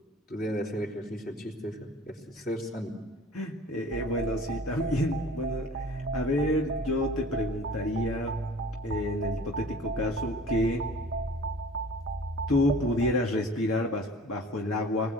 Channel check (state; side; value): normal; both; correlation 0.45